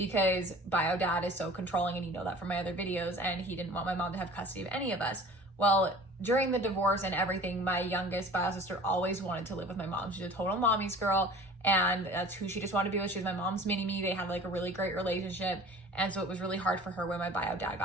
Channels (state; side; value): normal; both; correlation 0.44